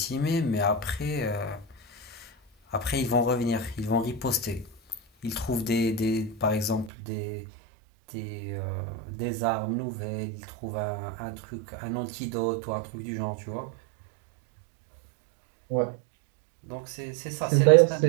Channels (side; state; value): left; drops out; at 6.9 s